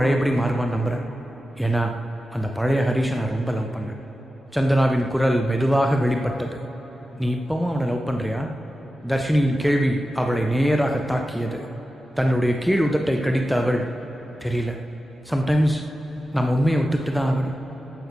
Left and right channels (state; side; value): normal; both; correlation 0.93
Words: மாறுவான்னு நம்புகிறேன். ஏன்னா அந்த பழைய ஹரிஷை நான் ரொம்ப லவ் பண்ணேன். சந்தனாவின் குரல் மெதுவாக வெளிப்பட்டது. நீ இப்பவும் அவனை லவ் பண்ணுறியா? தர்ஷினியின் கேள்வி அவளை நேராக தாக்கியது. தன்னுடைய கீழ் உதட்டை கடித்த அவள், தெரியல, சம்டைம்ஸ் நம்ம உண்மையை ஒத்துக்கிட்டு தான் ஆகணும்.